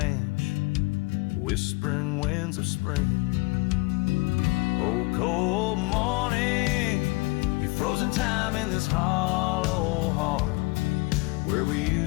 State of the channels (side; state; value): right; quieter; 25.1 dB